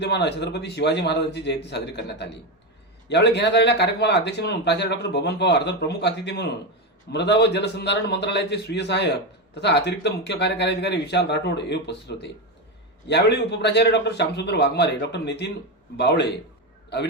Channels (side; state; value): both; normal; correlation 0.13